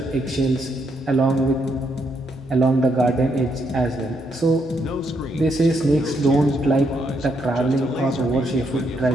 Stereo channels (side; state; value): both; normal; correlation 0.76